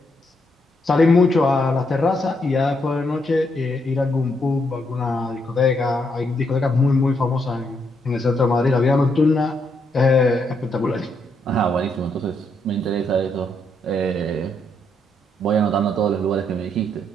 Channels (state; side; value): normal; both; correlation 0.77